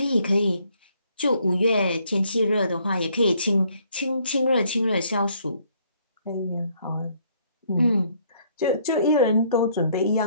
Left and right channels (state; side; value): inverted; both; correlation -0.66